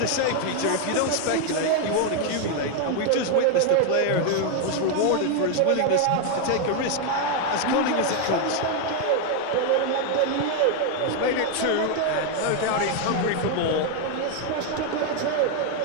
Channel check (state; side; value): different; both; correlation 0.01